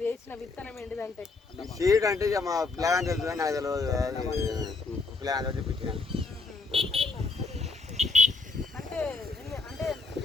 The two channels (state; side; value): quieter; right; 3.7 dB